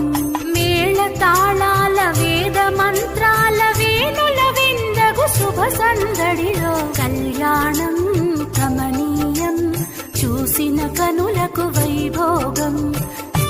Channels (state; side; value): identical; both; correlation 1.00